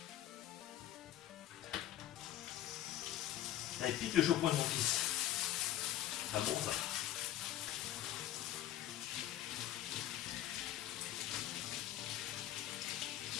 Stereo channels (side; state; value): right; quieter; 12.7 dB